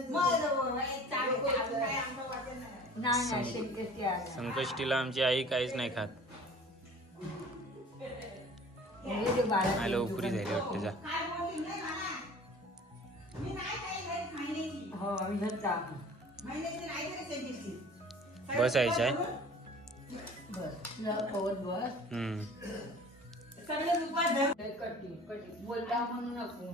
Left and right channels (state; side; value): normal; both; correlation 0.46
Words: नाही शेतकरी आहे संकष्टीला आमची आई काहीच नाही खात हे जे बाळा आलं उपरी झाली वाटतं जा हो विहता बसायचं आहे बस तुला पवत बस कटी बोलता म्हणू नको